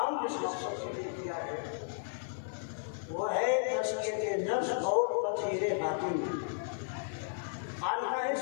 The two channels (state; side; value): silent; right; digital silence